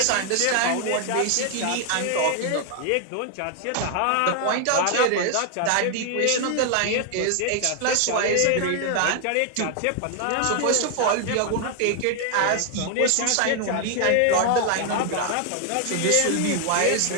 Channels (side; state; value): both; different; correlation 0.00